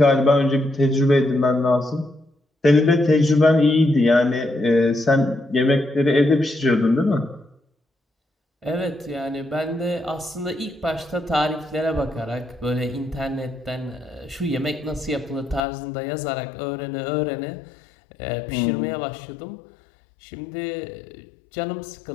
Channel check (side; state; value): right; drops out; at 15.6 s